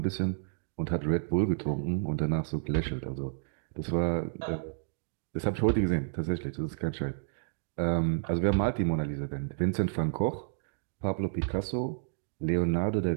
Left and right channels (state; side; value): silent; left; digital silence